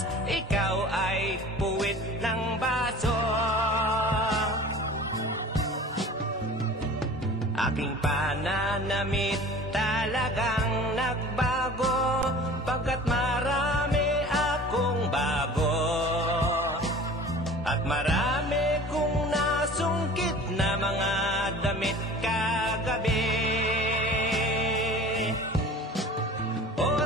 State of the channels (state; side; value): normal; both; correlation 0.41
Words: ikaw ay puwit ng baso. Aking pananamit talagang nagbago, pagkat marami akong bago, at marami kong nasungkit na mga damit kagabi. O